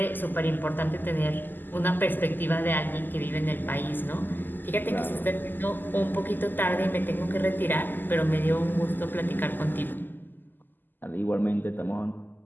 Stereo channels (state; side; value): late; right; 0.089 ms